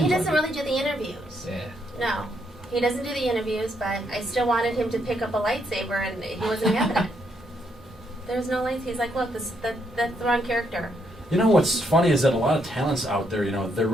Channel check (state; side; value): normal; both; correlation 0.75